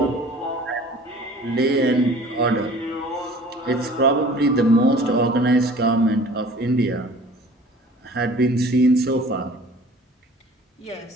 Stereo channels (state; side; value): normal; both; correlation 0.47